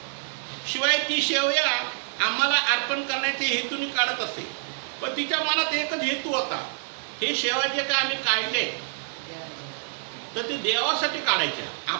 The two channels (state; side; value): silent; left; digital silence